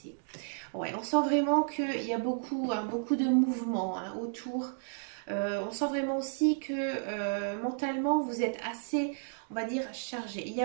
Ouais, on sent vraiment qu'il y a beaucoup, hein, beaucoup de mouvements hein, autour. On sent vraiment aussi que mentalement vous êtes assez, on va dire, chargé. Il y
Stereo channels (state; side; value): silent; left; digital silence